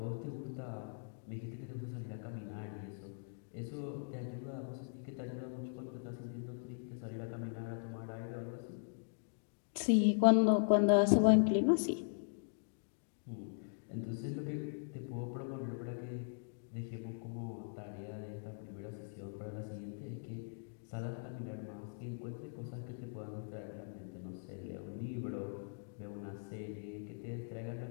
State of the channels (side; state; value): right; silent; digital silence